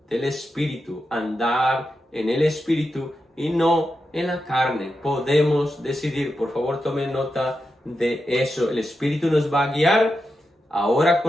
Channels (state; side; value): normal; both; correlation 0.88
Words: del Espíritu, andar en el Espíritu y no en la carne. Podemos decidir. Por favor, tomen nota de eso. El Espíritu nos va a guiar. Ahora